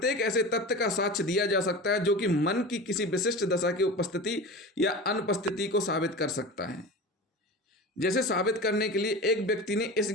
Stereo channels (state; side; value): normal; both; correlation 0.31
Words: ऐसे तथ्य का साक्ष्य दिया जा सकता है जो कि मन की किसी विशिष्ट दशा की उपस्थिति या अनुपस्थिति को साबित कर सकता है। जैसे साबित करने के लिए एक व्यक्ति ने इस